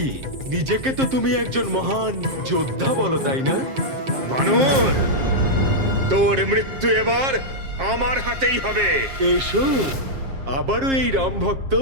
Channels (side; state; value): left; late; 7.5 ms